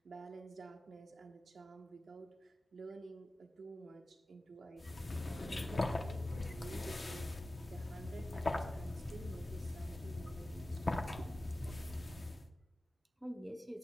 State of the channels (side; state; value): both; normal; correlation 0.95